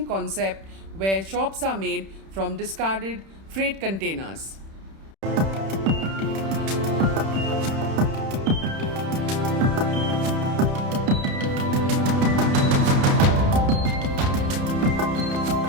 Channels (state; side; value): late; left; 31 ms